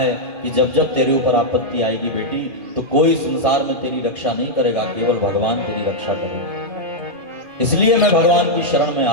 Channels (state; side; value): late; left; 2.4 ms